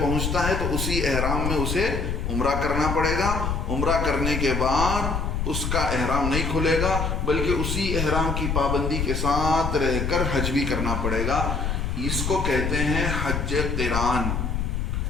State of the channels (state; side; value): noise; left; rumble, 1 dB below the sound